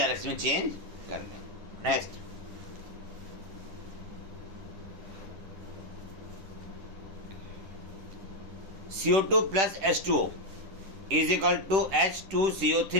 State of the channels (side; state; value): left; late; 10 ms